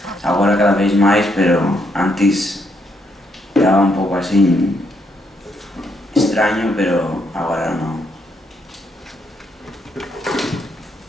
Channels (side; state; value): both; normal; correlation 0.75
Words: agora cada vez mais, pero antes era um pouco assim estranho, pero agora não.